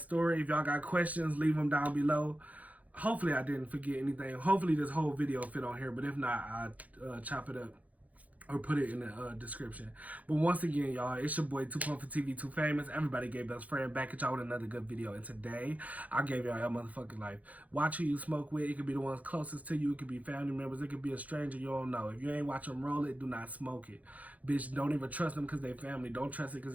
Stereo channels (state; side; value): late; left; 0.073 ms